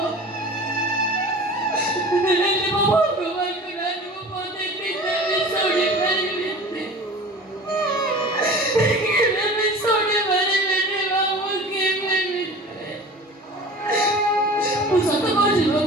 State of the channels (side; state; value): both; normal; correlation 0.39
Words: ହେଲେ ମୋ ଭଗବାନଙ୍କ ନାଁରେ ମୁଁ ପଦେ କେବେ ବି ଶୁଣି ପାରିବିନି। କେବେ ବି ଶୁଣି ପାରିବିନି ବାବୁ, କେବେ ବି। ମୁଁ ସତ କହୁଛି